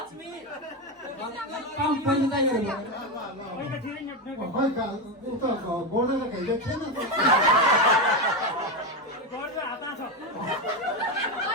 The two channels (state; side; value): normal; both; correlation 0.12